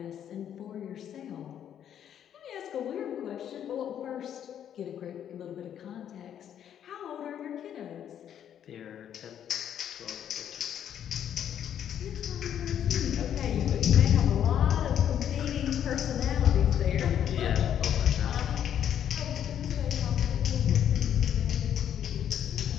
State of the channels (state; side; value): quieter; right; 9.7 dB